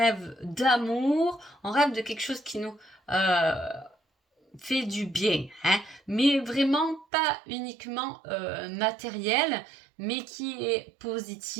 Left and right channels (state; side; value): drops out; left; at 7.1 s